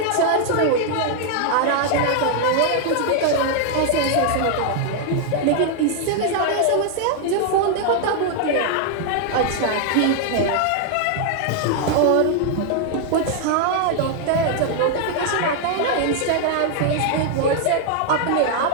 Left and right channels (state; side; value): different; both; correlation 0.00